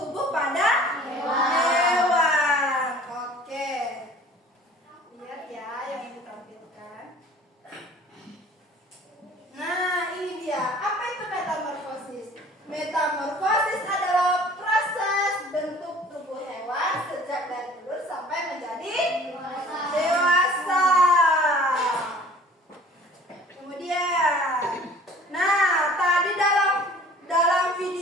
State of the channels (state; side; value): normal; both; correlation 0.49